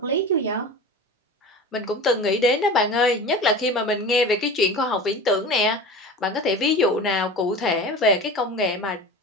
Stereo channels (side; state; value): both; normal; correlation 0.34